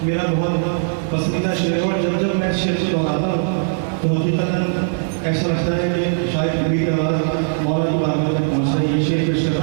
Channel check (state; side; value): silent; left; 60 dB below the other